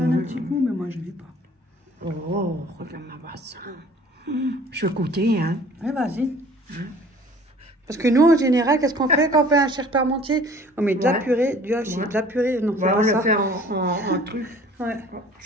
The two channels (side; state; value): both; normal; correlation 0.50